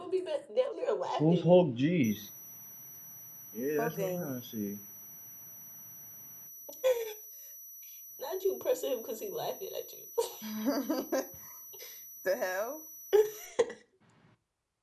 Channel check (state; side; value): identical; both; correlation 1.00